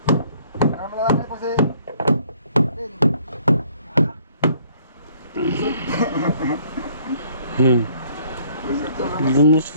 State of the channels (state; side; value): inverted; both; correlation -0.61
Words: Namalaki po si Din.